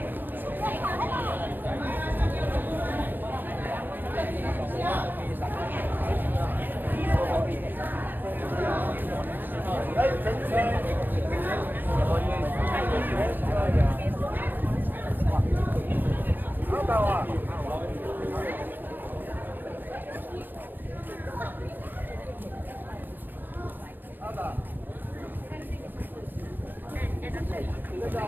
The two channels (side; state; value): left; late; 0.091 ms